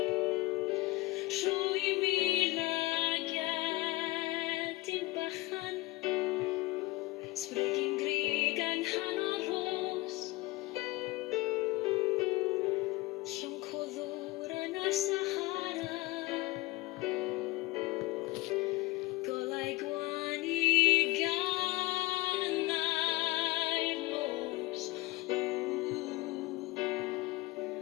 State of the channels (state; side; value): quieter; right; 20.1 dB